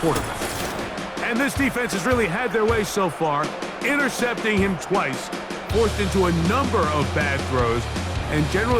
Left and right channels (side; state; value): both; identical; correlation 1.00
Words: quarterback. And this defense has really had their way so far, intercepting him twice, forced into a number of bad throws, and